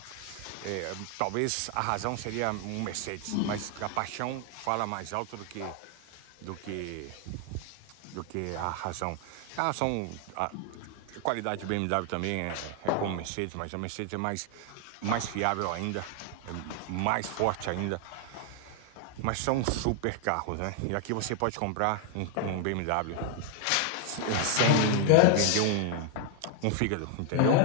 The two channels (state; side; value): different; both; correlation 0.00